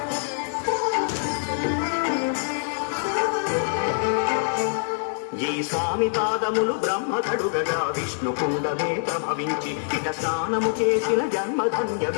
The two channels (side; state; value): right; silent; 62 dB below the other